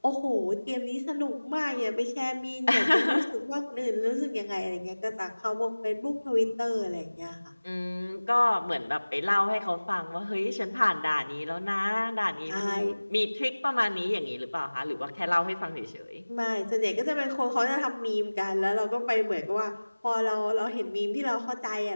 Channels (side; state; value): both; inverted; correlation -1.00